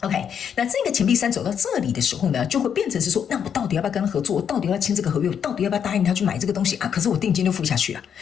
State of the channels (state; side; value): quieter; right; 8.0 dB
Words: 那這個錢幣3走到這裡的時候呢，就會變成是說，那我到底要不要跟他合作？我到底要不要簽這個合約？我到底要不要答應他去買這個東西啊？可是我定金就付下去了。